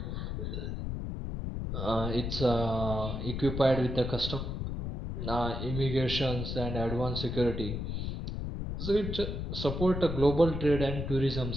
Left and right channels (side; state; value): left; noise; rumble, 4 dB below the sound